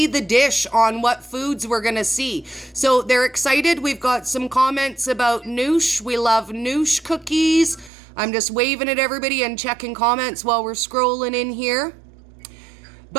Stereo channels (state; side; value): drops out; left; at 7.9 s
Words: the dish on what foods we're going to see. So they're excited. We've got some comments about noosh. We love noosh cookies. I'm just waving at everybody and checking comments while we're scrolling in here.